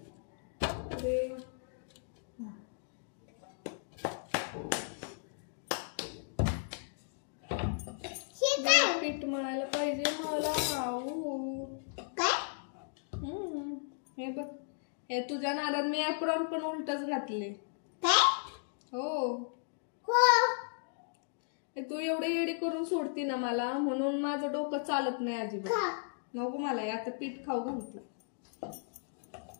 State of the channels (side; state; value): right; silent; digital silence